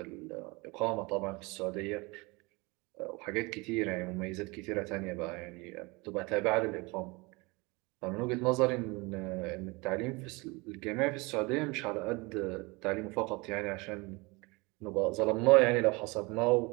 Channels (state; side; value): quieter; left; 25.7 dB